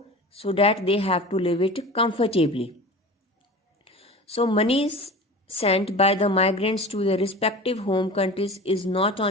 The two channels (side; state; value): both; normal; correlation 0.35